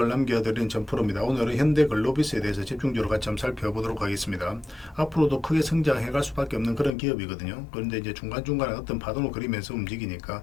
남겨드리는 전프로입니다. 오늘은 현대글로비스에 대해서 집중적으로 같이 한번 살펴보도록 하겠습니다. 앞으로도 크게 성장해갈 수밖에 없는 그런 기업이거든요. 그런데 이제 중간중간에 어떤 파동을 그리면서 움직이니까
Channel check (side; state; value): right; drops out; at 7.0 s